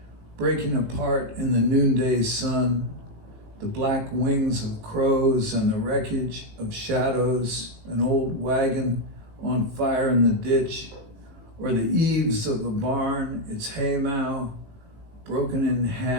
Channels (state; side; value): late; left; 18 ms